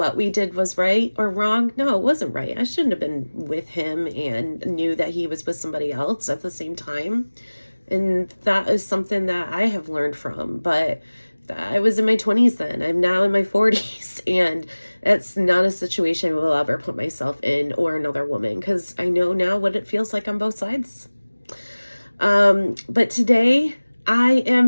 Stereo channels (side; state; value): both; inverted; correlation -1.00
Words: we did was right or wrong? No, it wasn't right. I shouldn't have been with him and knew that he was with somebody else at the same time. And that is something that I have learned from. But I was in my 20s then. I'm now in my 40s. And that's not a situation I will ever put myself in or another woman, because I know now what it feels like on both sides. But today I